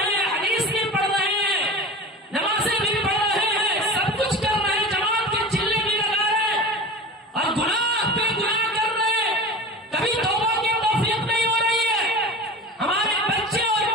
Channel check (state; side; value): normal; both; correlation 0.33